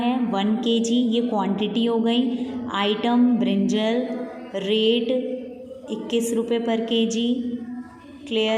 1 केजी। ये क्वांटिटी हो गई। आइटम ब्रिंजल, रेट 21 रुपये पर केजी,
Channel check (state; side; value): identical; both; correlation 1.00